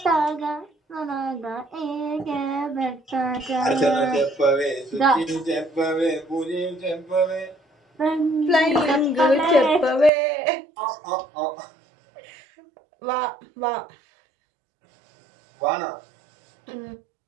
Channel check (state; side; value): drops out; left; at 10.1 s